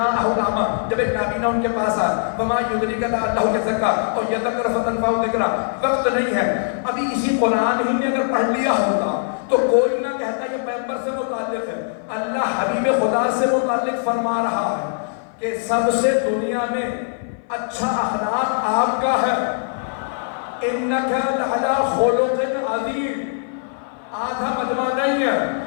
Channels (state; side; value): silent; right; 57 dB below the other